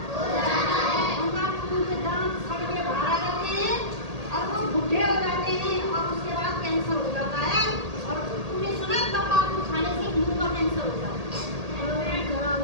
उनका खून के दांत सड़ के बाहर आ जाते हैं और वो बूढ़े हो जाते हैं और उसके बाद कैंसर हो जाता है। और तुमने सुना तंबाकू खाने से मुंह का कैंसर हो जाता है।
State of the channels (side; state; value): left; late; 1.8 ms